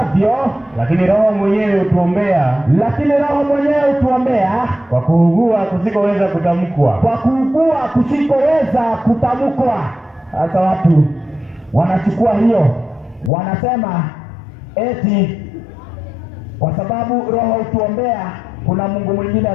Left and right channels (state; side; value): drops out; right; at 13.3 s